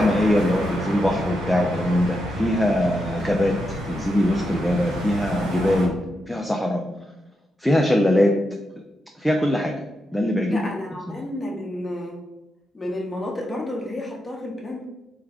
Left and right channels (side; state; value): both; normal; correlation 0.85